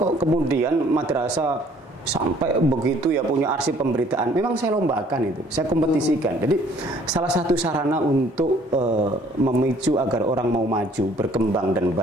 kemudian madrasah sampai begitu ya punya arsip pemberitaan? Memang saya lombakan itu, saya kompetisikan. Jadi salah satu sarana untuk memicu agar orang mau maju, berkembang dan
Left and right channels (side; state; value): both; normal; correlation 0.59